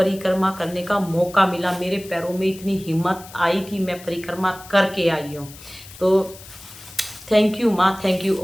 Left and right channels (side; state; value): left; noise; hiss, 18 dB below the sound